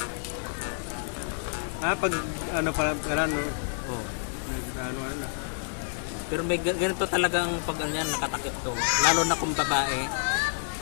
Pag ano pa, ano, Oo. ano na. Pero may ganito talagang pag ano yan, nakatakip to. Lalo na kung babae.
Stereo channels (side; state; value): right; silent; digital silence